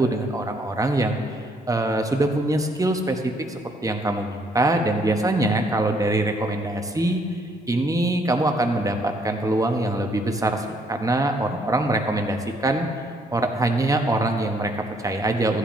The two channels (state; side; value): normal; both; correlation 0.68